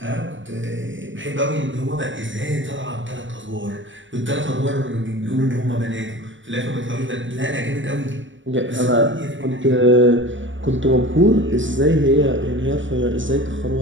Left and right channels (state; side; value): late; left; 0.56 ms